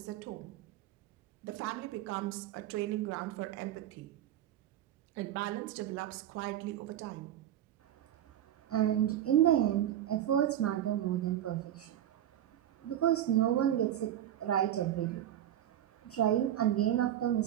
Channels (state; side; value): quieter; left; 11.7 dB